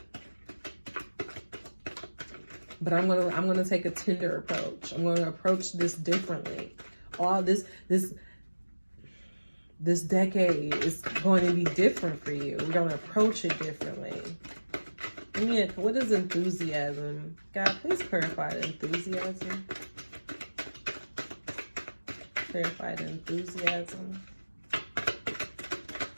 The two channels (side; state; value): both; inverted; correlation -1.00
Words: But I'm going to take a tender approach. I'm going to approach this differently. All this decade is going to be different for you. We're going to approach it differently. And what is enthusiasm? God, please clarify the enthusiasm. Clarify the enthusiasm.